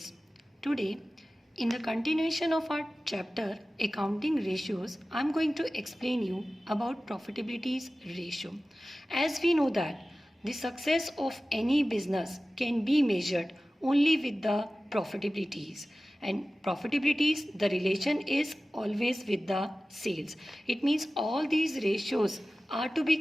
Today, in the continuation of our chapter Accounting Ratios, I am going to explain you about profitability's ratio. As we know that the success of any business can be measured only with the profitabilities, and profitabilities, the relation is always with the sales. It means all these ratios are to be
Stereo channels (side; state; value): both; normal; correlation 0.96